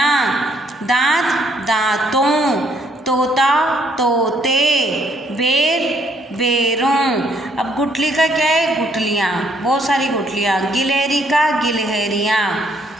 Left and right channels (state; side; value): normal; both; correlation 0.68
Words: दांत दांतों, तोता तोते, बेर बेरों। अब गुठली का क्या है, गुठलियाँ, बहुत सारी गुठलियाँ। गिलहरी का गिलहरियाँ,